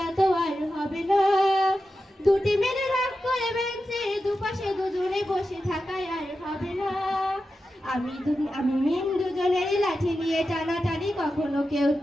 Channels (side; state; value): both; normal; correlation 0.91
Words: তো আর হবে না। দুটি মেরে রাগ করে বেঞ্চের দুপাশে দুজনে বসে থাকায় আর হবে না। আমি মিম দুজনের লাঠি নিয়ে টানাটানি কখনো কেউ